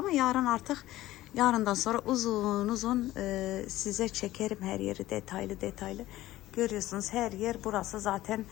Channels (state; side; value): quieter; right; 15.8 dB